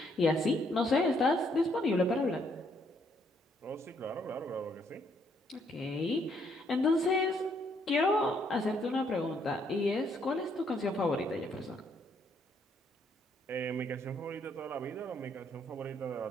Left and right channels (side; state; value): both; normal; correlation 0.70